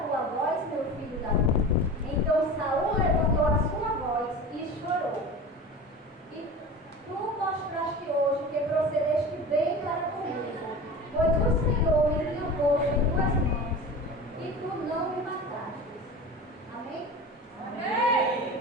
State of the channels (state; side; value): normal; both; correlation 0.33